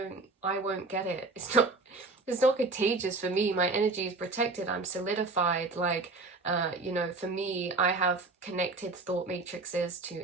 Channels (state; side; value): quieter; left; 3.6 dB